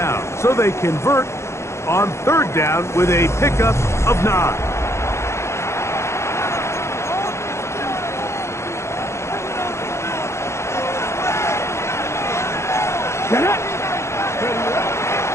So they convert on third down with a pickup of 9.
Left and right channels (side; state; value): right; late; 0.13 ms